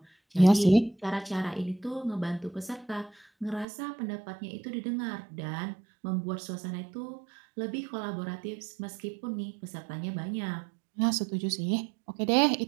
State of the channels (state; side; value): drops out; left; at 3.7 s